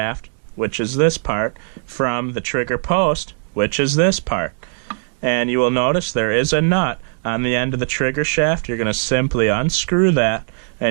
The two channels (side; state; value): left; silent; 66 dB below the other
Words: which is this part, from the trigger post, which is this part. And you will notice there is a nut on the end of the trigger shaft. You're going to simply unscrew that,